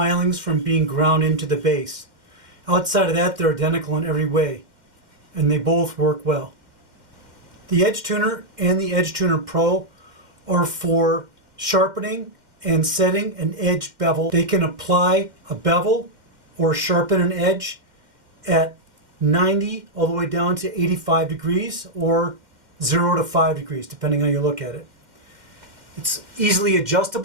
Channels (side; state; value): left; late; 2.1 ms